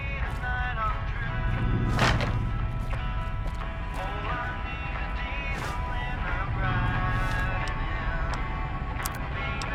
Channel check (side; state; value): both; identical; correlation 1.00